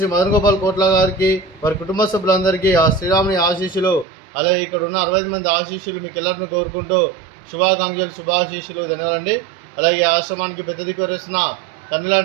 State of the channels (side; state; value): left; drops out; at 4.0 s